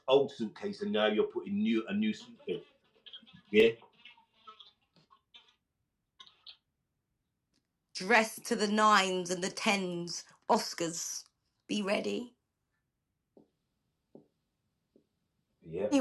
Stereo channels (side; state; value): both; identical; correlation 1.00